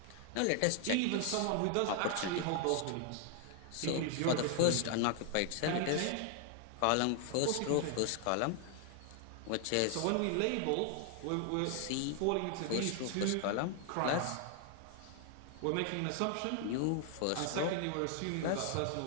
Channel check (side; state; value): both; different; correlation 0.00